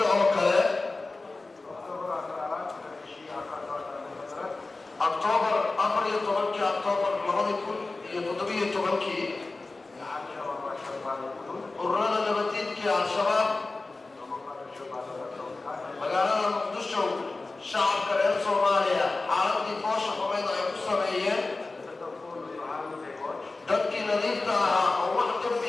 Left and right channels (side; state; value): right; quieter; 3.4 dB